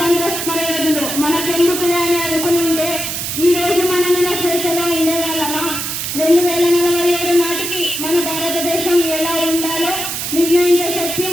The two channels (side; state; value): right; noise; hiss, 4 dB below the sound